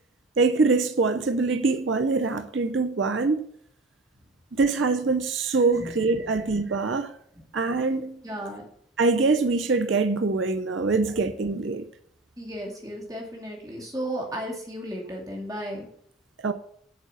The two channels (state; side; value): quieter; left; 3.3 dB